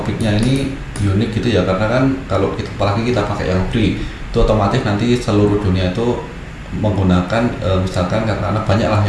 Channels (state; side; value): identical; both; correlation 1.00